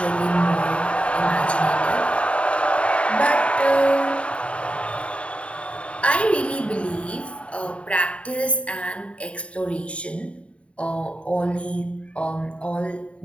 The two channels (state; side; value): late; right; 0.062 ms